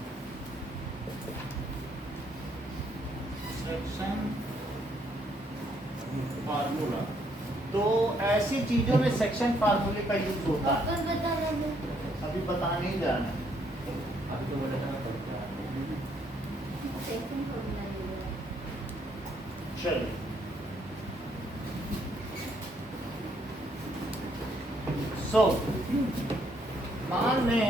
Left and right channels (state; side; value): normal; both; correlation 0.70